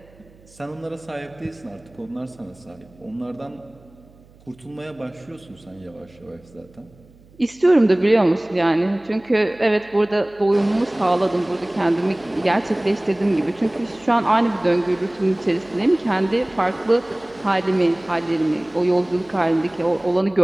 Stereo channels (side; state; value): right; noise; hum, 27 dB below the sound